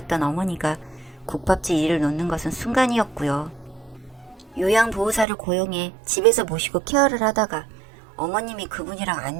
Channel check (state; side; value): drops out; left; at 5.2 s